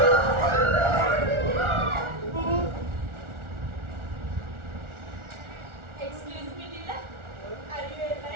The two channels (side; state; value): left; late; 1.4 ms